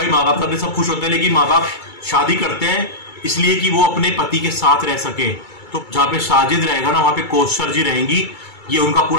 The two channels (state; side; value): late; right; 2.3 ms